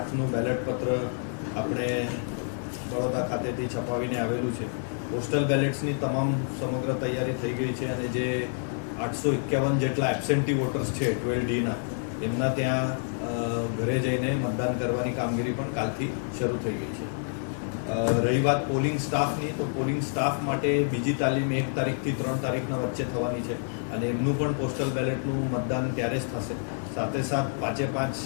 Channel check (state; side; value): silent; right; digital silence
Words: બેલેટ પત્ર આપણે બરોડા ખાતેથી છપાવીને આવેલું છે. પોસ્ટલ બેલેટ્સની તમામ સમગ્ર તૈયારી થઈ ગઈ છે અને જે 851 જેટલા એબસેન્ટી વોટર્સ છે 12Dના, એમના ત્યાં ઘરે જઈને મતદાન કરવાની કામગીરી પણ કાલથી શરૂ થઈ ગઈ છે. રહી વાત પોલિંગ સ્ટાફની, તો પોલિંગ સ્ટાફ માટે બીજી તાલીમ 1 તારીખથી 3 તારીખના વચ્ચે થવાની છે અને એમનું પણ પોસ્ટલ બેલેટનું મતદાન ત્યારે જ થશે. સાથે સાથ 5